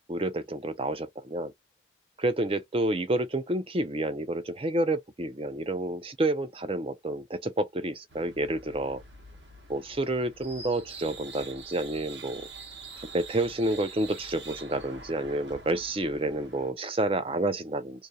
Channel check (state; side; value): normal; both; correlation 0.48